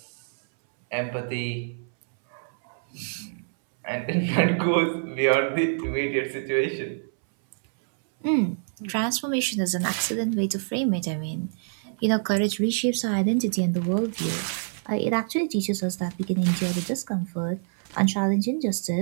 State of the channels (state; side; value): silent; left; 61 dB below the other